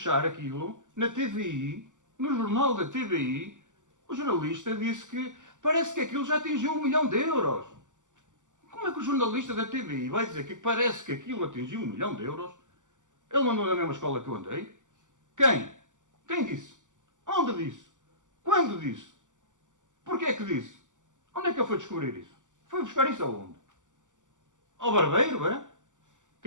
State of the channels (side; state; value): left; late; 0.86 ms